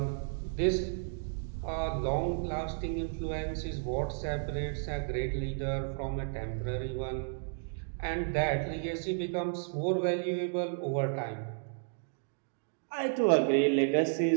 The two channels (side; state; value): left; silent; digital silence